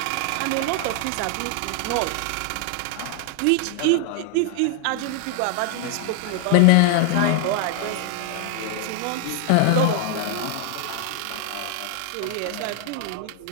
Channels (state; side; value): different; both; correlation 0.00